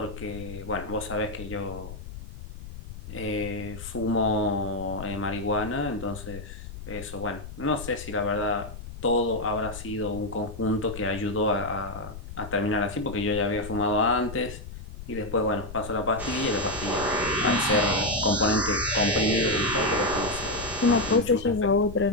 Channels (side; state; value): left; noise; rumble, 12 dB below the sound